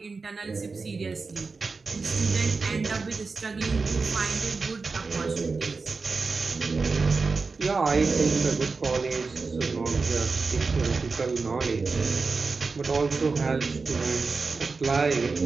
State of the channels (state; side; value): quieter; left; 4.3 dB